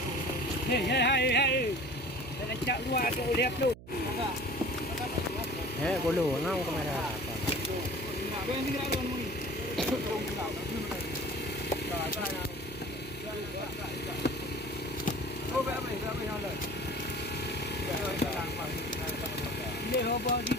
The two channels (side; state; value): right; noise; hum, 17 dB below the sound